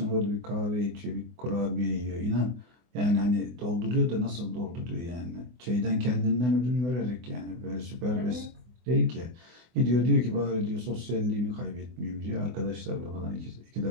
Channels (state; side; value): late; left; 24 ms